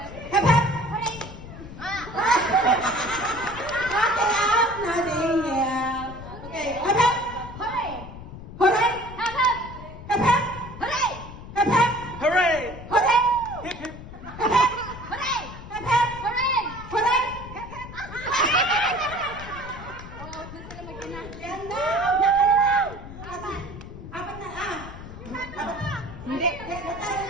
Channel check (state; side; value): noise; left; rumble, 13 dB below the sound